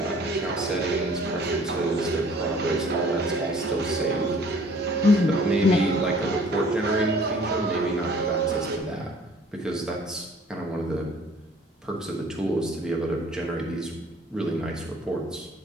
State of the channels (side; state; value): both; normal; correlation 0.54